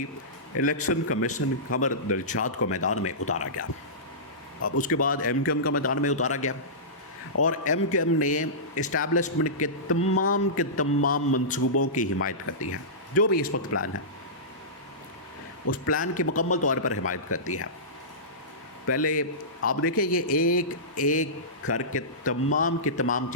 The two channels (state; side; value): normal; both; correlation -0.19